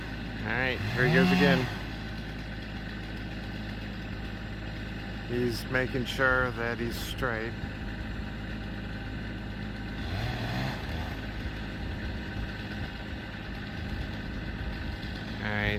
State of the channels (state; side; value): identical; both; correlation 1.00